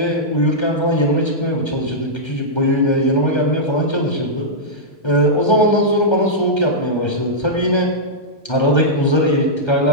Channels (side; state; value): right; late; 1.3 ms